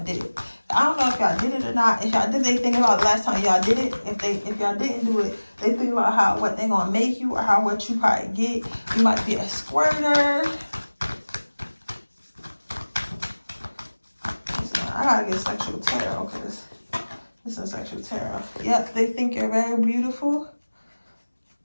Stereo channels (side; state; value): both; inverted; correlation -1.00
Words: did it. I don't know if y'all did it or not. If y'all did, they think about last time y'all did it. If y'all didn't do it, they think about how what they gonna make you or how what you probably get. You might be a squirter. I gotta get sexual tarot because this is sexual tarot. Yep, they think you're very beautiful.